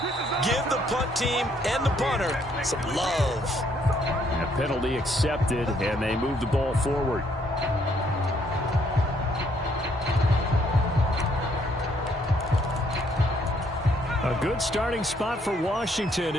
Give the punt team and the punter some love. A penalty accepted, and they move the ball forward. A good starting spot for Washington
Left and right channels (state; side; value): normal; both; correlation 0.68